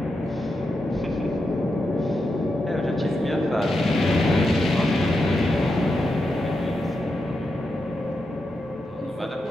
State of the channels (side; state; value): both; normal; correlation 0.86